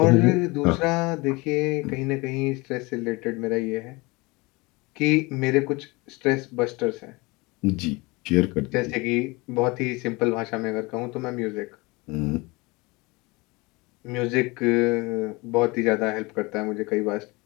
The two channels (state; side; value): quieter; right; 24.8 dB